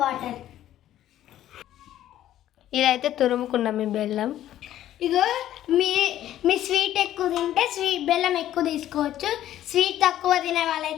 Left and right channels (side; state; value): right; quieter; 12.5 dB